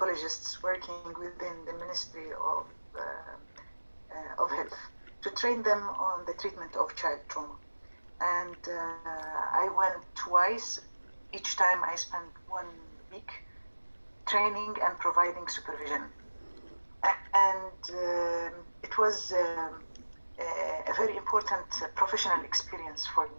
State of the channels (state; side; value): inverted; both; correlation -1.00